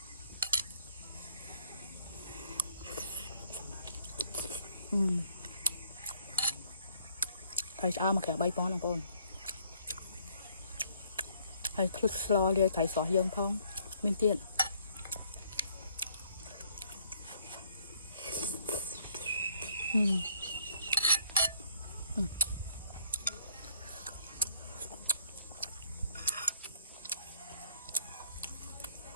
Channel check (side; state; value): both; inverted; correlation -0.63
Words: ត្រីឆ្អើរមកក្រាប3ប៉ុណ្ណឹងបងប្អូនហើយភ្លឹកស្លលាយត្រីស្រស់យើងផងមានទៀត